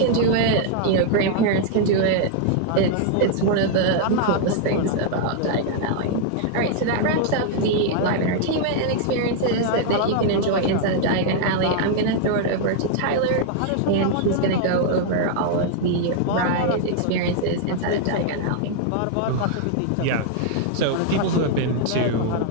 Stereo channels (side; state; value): both; different; correlation 0.00